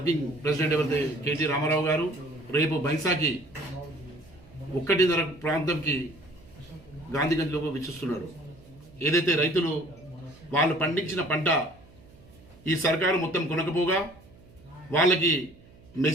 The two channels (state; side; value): noise; right; hum, 24 dB below the sound